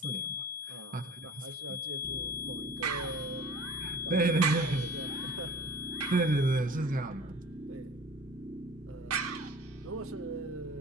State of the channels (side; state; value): both; normal; correlation 0.42